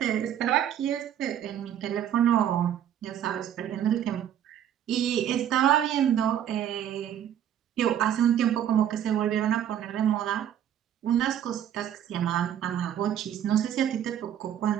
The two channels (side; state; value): left; quieter; 10.2 dB